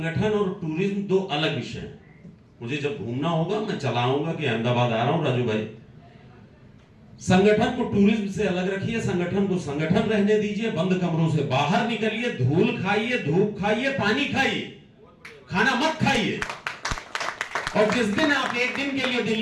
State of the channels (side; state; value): both; identical; correlation 1.00